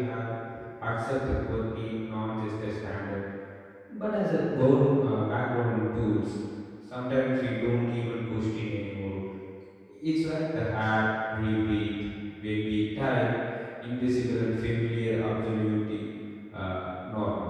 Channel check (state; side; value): identical; both; correlation 1.00